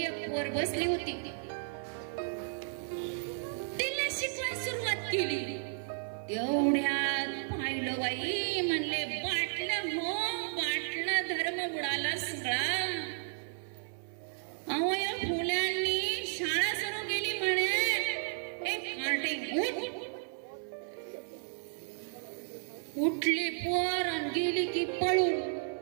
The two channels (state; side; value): silent; left; 56 dB below the other